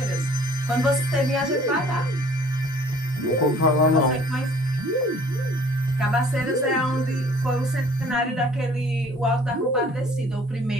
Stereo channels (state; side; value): normal; both; correlation 0.54